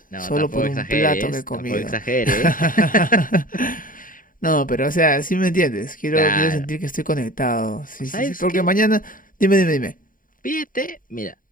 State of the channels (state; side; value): late; right; 0.40 ms